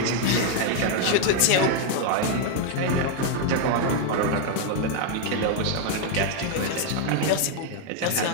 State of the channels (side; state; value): both; different; correlation 0.00